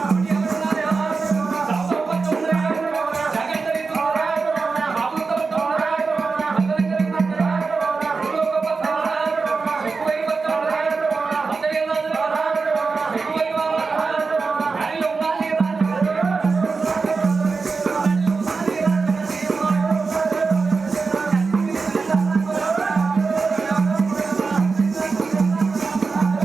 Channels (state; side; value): quieter; left; 4.5 dB